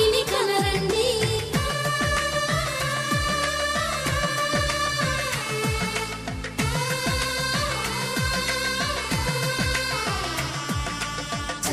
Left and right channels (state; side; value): identical; both; correlation 1.00